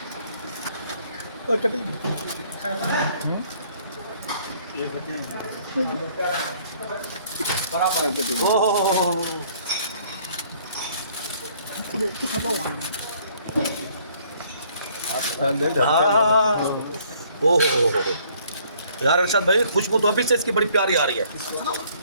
यार अरशद भाई खुशबू तो अभी से इसकी बड़ी प्यारी आ रही है।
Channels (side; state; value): both; inverted; correlation -0.61